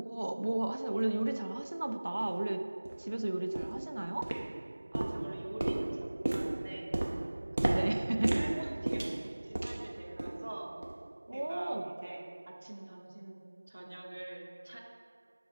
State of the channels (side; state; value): both; inverted; correlation -1.00